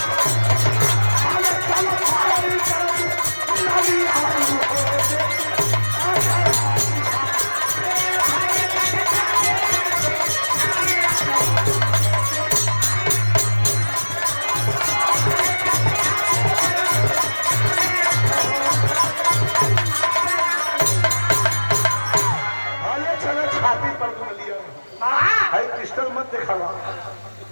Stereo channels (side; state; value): both; inverted; correlation -1.00